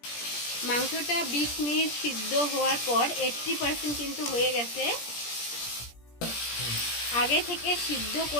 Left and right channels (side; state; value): right; late; 17 ms